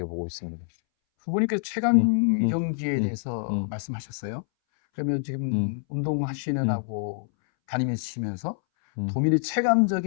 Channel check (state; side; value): silent; right; 61 dB below the other